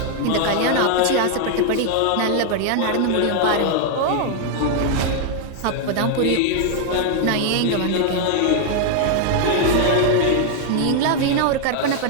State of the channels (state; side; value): different; both; correlation 0.00